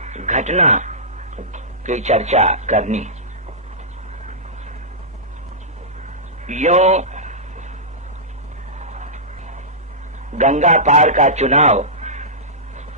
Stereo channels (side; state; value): both; normal; correlation -0.15